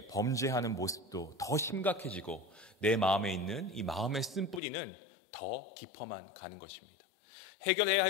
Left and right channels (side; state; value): right; drops out; at 4.6 s